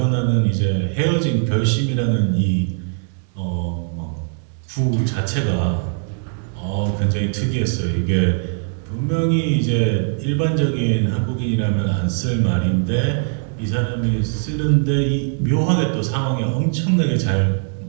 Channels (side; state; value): left; silent; 56 dB below the other